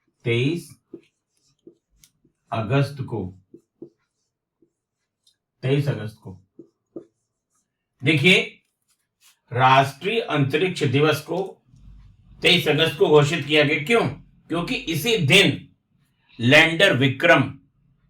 को। देखिए, राष्ट्रीय अंतरिक्ष दिवस को 23 अगस्त को घोषित किया गया। क्यों? क्योंकि इसी दिन लैंडर विक्रम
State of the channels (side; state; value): both; identical; correlation 1.00